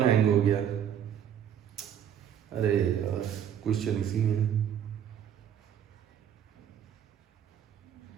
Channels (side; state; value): left; quieter; 9.3 dB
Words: हैंग हो गया, अरे यार क्वेश्चन इसी में है।